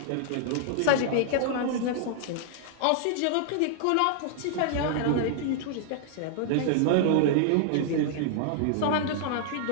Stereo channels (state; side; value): different; both; correlation -0.01